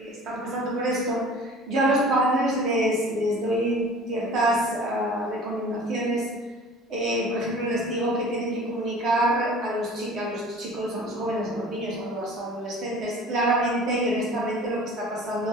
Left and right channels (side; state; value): both; normal; correlation 0.44